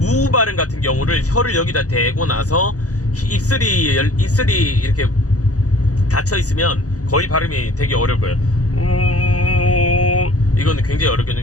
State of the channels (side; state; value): right; late; 0.67 ms